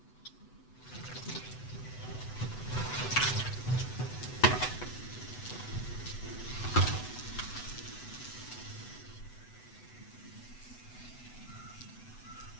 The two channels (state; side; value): late; right; 8.0 ms